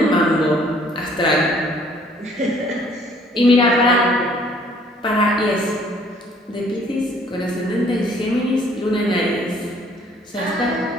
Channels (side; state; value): both; normal; correlation 0.59